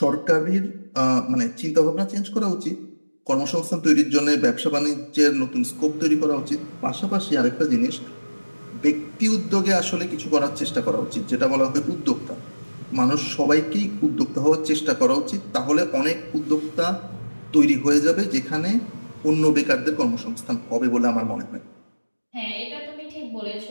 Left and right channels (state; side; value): inverted; both; correlation -1.00